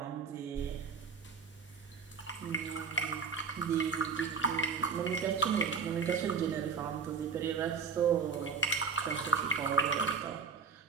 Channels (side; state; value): left; quieter; 5.6 dB